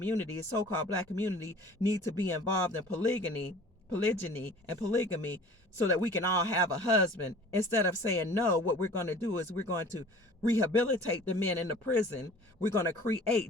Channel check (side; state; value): both; normal; correlation 0.46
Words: the so-called black community, need to be involved in polygyny and polygamy so that we can all have a husband. Instead of saying no, what we're going to do is we're going to rehabilitate the men in the prison. We're going to